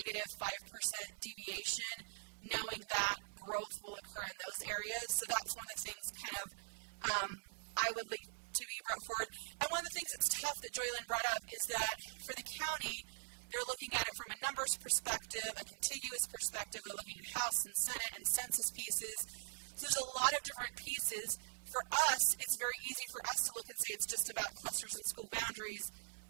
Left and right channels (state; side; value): silent; left; digital silence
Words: 5% deviation, knowing that growth will occur in those areas. So that's one of the things kind of I would like to be brought forward. And one of the things that's tough that Joylyn brought up is that for the county, they're looking at it from a numbers perspective, a contiguous perspective. They're looking at House and Senate and census pieces. So there's a lot of different pieces. For us, it's very easy for us to look and say it's just about clusters and school boundaries,